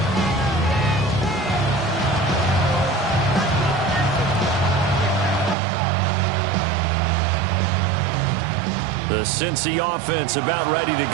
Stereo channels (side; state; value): left; drops out; at 5.6 s